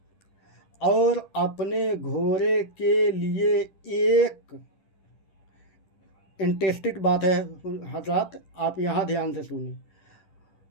और अपने घोड़े के लिए एक इंटरेस्टेड बात है हजरत, आप यहाँ ध्यान से सुनिए।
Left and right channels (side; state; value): right; late; 10 ms